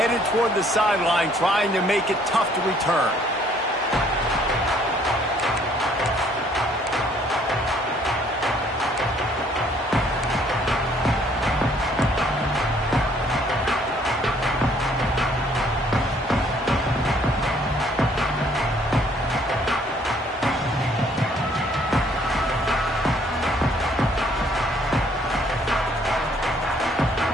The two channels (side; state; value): both; normal; correlation 0.62